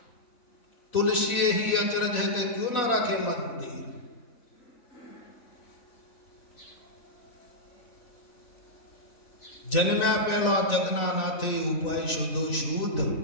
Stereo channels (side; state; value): right; late; 4.0 ms